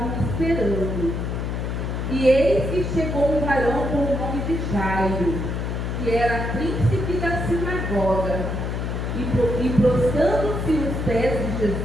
esperando. E eis que chegou um varão com o nome de Jairo, que era príncipe da sinagoga, e prostrando-se os pés de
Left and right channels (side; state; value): left; noise; hum, 2 dB below the sound